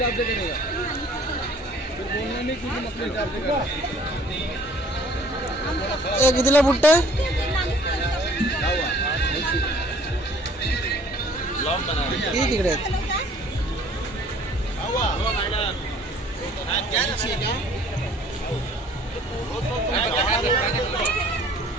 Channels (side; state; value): both; normal; correlation 0.55